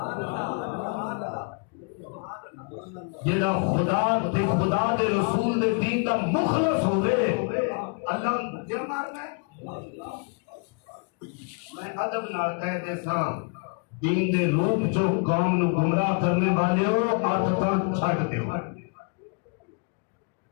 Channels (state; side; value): quieter; right; 38.9 dB